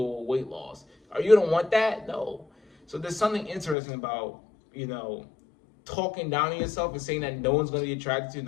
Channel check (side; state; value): right; drops out; at 3.8 s